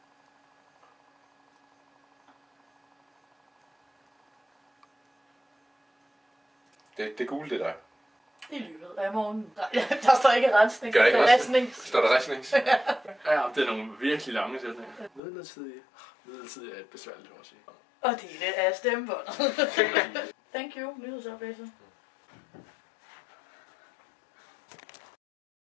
Det er gule, det der. I løbet af morgenen. Nej, der står ikke rensning. Gør ikke der er rensning. Står der rensning? Ja, det er nogle virkelig lange sætninger. Midlertidig er et besværligt ord at sige. Og det er af stemmebåndet. Thank you, nyhedsoplæser.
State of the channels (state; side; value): drops out; right; at 15.2 s